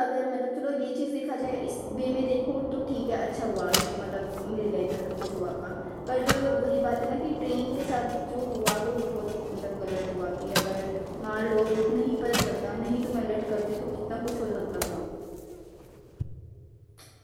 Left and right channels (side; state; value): both; identical; correlation 1.00